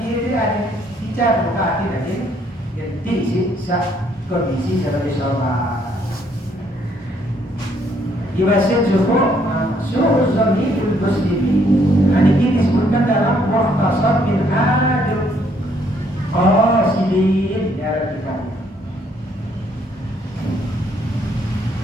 ada dicat buka hati tadi jadi kondisi sebagai sholat Ibasin cukup suruh zamidul muslimin. Ini disebutkan dalam Mukhtasar bin Adil Qasidin ya kita.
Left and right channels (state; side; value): normal; both; correlation 0.68